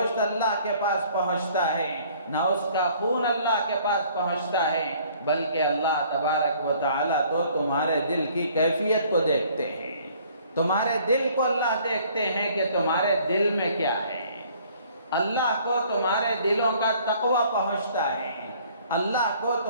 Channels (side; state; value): both; inverted; correlation -0.57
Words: اللہ کے پاس پہنچتا ہے، نہ اس کا خون اللہ کے پاس پہنچتا ہے، بلکہ اللہ تبارک و تعالیٰ تو تمہارے دل کی کیفیت کو دیکھتے ہیں۔ تمہارے دل کو اللہ دیکھتے ہیں کہ تمہارے دل میں کیا ہے۔ اللہ کو تمہارے دلوں کا تقوی پہنچتا ہے، اللہ کو